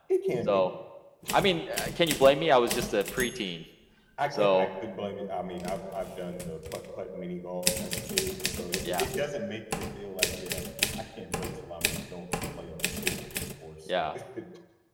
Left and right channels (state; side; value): identical; both; correlation 1.00